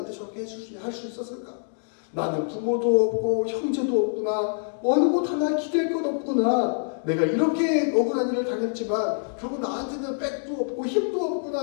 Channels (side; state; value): right; silent; digital silence